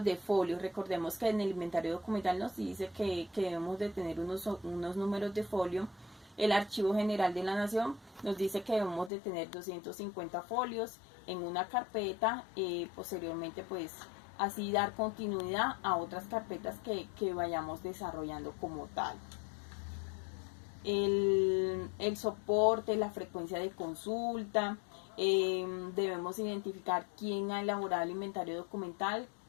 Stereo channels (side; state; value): right; drops out; at 9.1 s